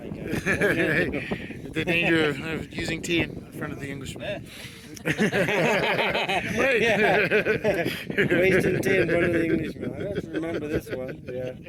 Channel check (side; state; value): both; identical; correlation 1.00